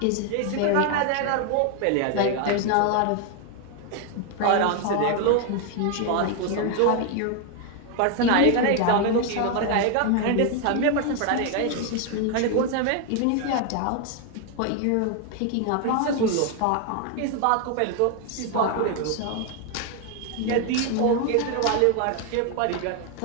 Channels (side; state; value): both; different; correlation 0.01